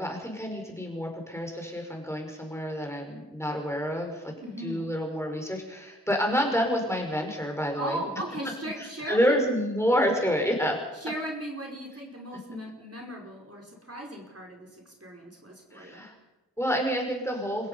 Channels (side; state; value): both; normal; correlation 0.63